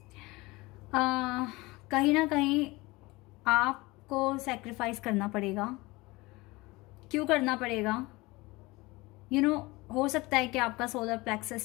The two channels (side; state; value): right; quieter; 22.2 dB